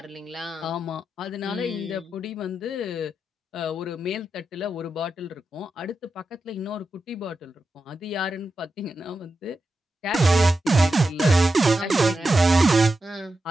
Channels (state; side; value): normal; both; correlation 0.89